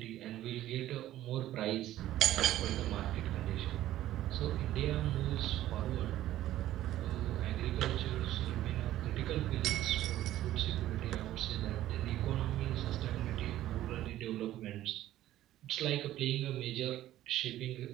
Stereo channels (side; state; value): left; quieter; 13.8 dB